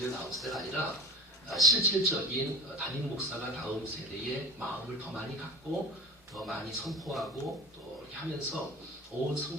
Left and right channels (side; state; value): both; normal; correlation 0.33